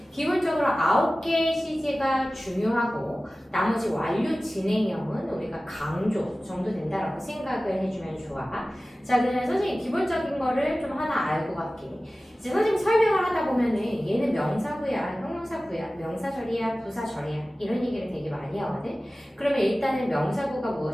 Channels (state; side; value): normal; both; correlation 0.97